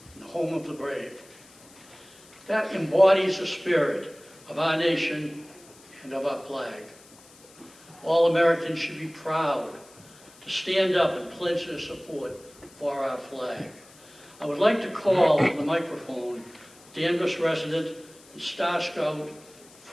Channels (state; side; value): noise; left; hiss, 24 dB below the sound